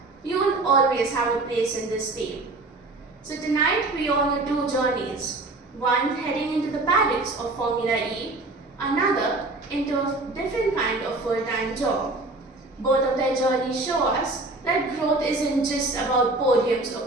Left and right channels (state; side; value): quieter; left; 3.0 dB